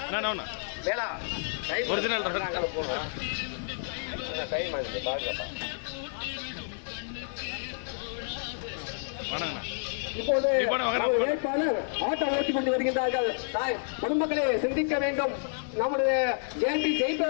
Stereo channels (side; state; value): right; silent; digital silence